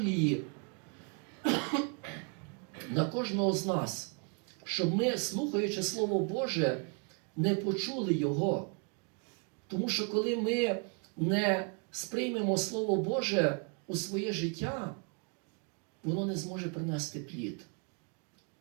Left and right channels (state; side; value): quieter; left; 36.4 dB